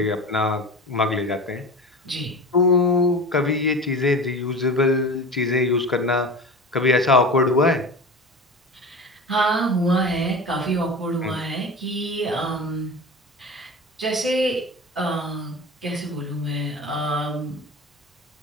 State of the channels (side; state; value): both; normal; correlation 0.32